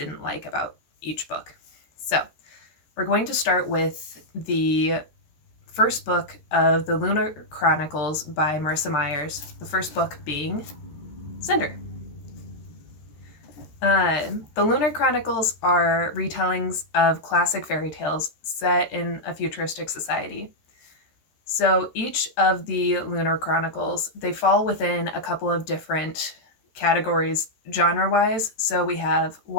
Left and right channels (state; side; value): late; right; 13 ms